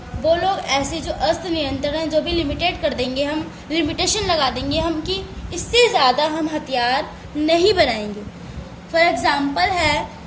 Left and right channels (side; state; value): both; identical; correlation 1.00